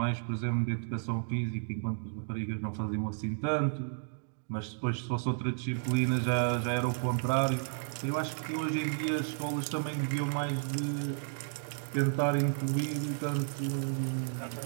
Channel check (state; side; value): silent; left; digital silence